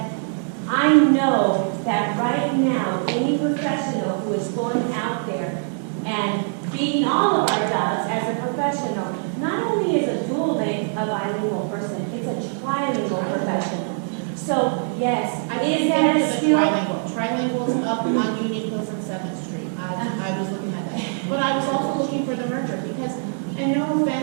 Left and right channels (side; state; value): left; silent; digital silence